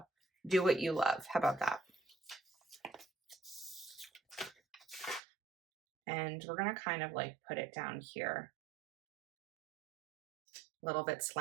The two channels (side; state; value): left; drops out; at 5.2 s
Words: Do what you love. How about that? And we're going to kind of like put it down here, a little bit